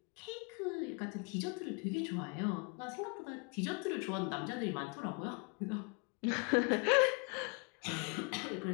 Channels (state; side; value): quieter; right; 33.1 dB